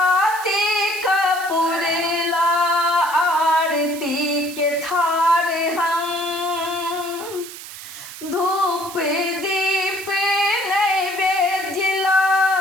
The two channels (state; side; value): noise; right; hiss, 13 dB below the sound